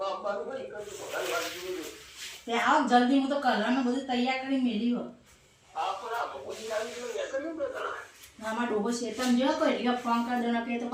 તે આવો જલ્દી હું તો કલરનું બધું તૈયાર કરી મેલી હો. આમાં ડોબો શેતન જો કોઈ એટલે ફોન કરી દો ને કે તો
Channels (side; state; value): both; identical; correlation 1.00